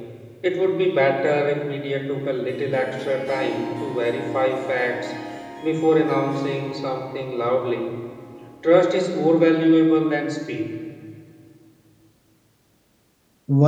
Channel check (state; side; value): identical; both; correlation 1.00